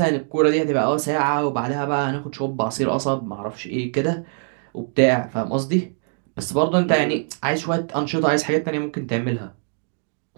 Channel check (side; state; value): left; silent; 58 dB below the other